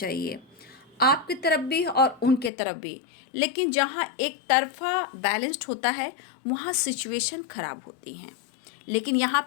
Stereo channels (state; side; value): drops out; right; at 2.5 s